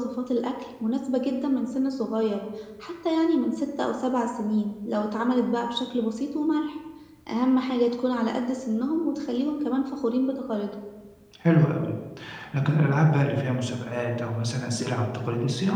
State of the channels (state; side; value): identical; both; correlation 1.00